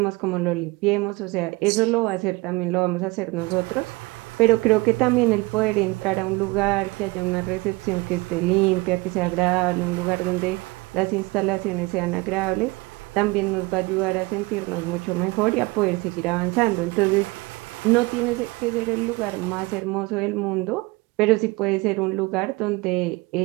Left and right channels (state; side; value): quieter; left; 23.8 dB